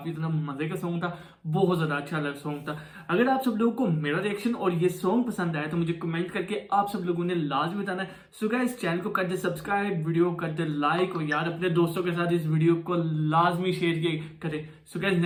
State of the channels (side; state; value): both; identical; correlation 1.00